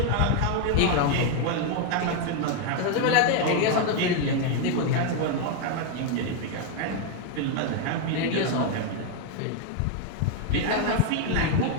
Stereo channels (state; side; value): different; both; correlation 0.01